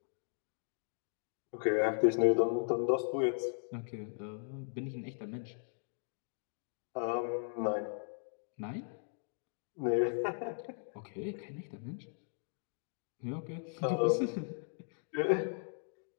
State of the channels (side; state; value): right; silent; digital silence